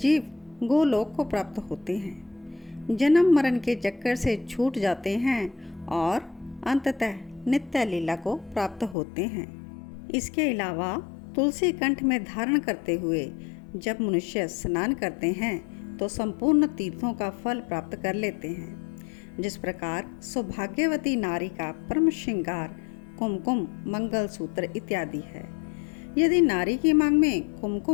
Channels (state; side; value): drops out; right; at 9.0 s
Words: गोलोक को प्राप्त होते हैं, जन्म मरण के चक्कर से छूट जाते हैं और अंततः नित्य लीला को प्राप्त होते हैं। इसके अलावा तुलसी कंठ में धारण करते हुए जब मनुष्य स्नान करते हैं तो संपूर्ण तीर्थों का फल प्राप्त कर लेते हैं। जिस प्रकार सौभाग्यवती नारी का परम श्रृंगार कुमकुम, मंगलसूत्र इत्यादि है। यदि नारी की मांग में